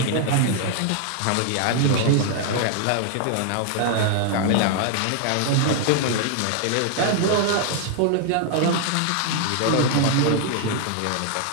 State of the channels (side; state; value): both; different; correlation 0.00